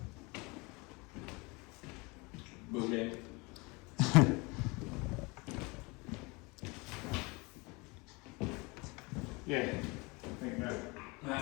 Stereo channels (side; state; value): right; quieter; 26.7 dB